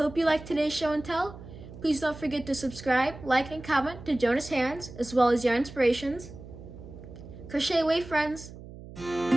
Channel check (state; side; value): noise; right; hum, 15 dB below the sound